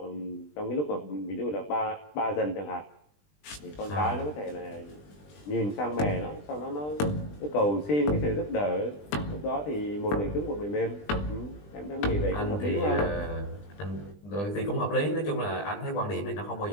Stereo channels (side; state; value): right; late; 20 ms